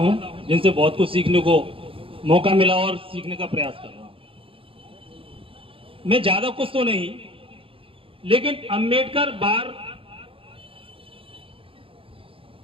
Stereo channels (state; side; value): late; left; 0.26 ms